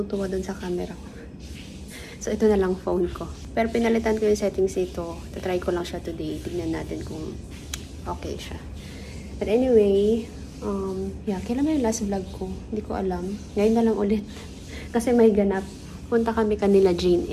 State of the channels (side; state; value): both; identical; correlation 1.00